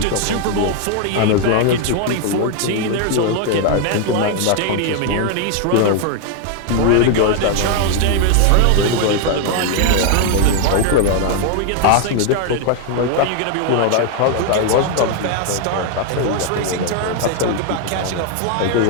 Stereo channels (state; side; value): different; both; correlation 0.00